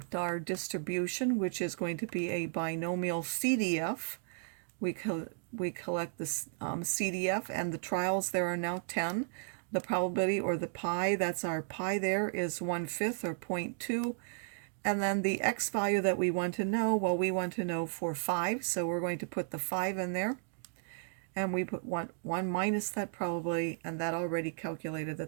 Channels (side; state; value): left; silent; digital silence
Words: our distribution, which is going to be a binomial CDF. We collect this CDF, and the trials there are now 10. The probability, or the pi, that's our pi there, is 1/5 or 0.2. And then the x value that we want to know, well, we want to know for 5, so we're going to put the 5 in there. and we put 1 minus that probability, and that already calculated